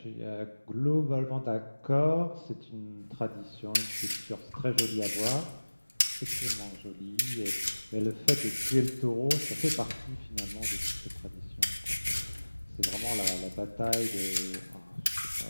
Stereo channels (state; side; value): inverted; both; correlation -1.00